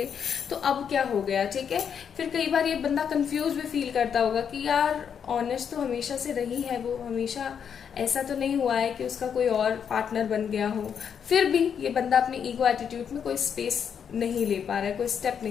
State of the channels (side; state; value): right; quieter; 7.6 dB